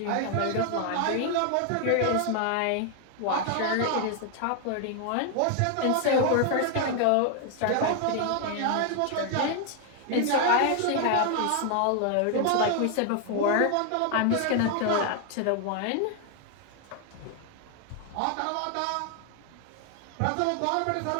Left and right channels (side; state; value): both; different; correlation 0.00